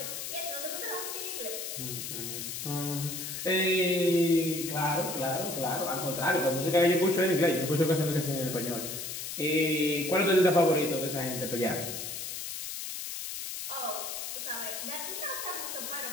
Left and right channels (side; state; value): left; noise; hiss, 6 dB below the sound